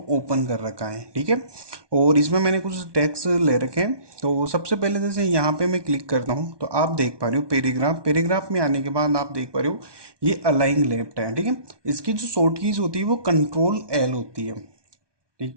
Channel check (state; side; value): late; left; 1.2 ms